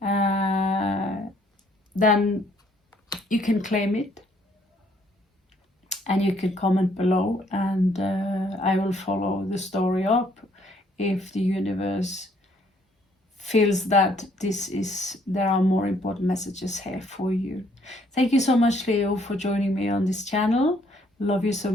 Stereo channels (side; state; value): both; normal; correlation 0.65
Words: then you can claim it and you can comment below, and I will follow the story up if the universe feels that there are more important messages here for you. Thank you so much, Leo, for joining me on this channel. Love you so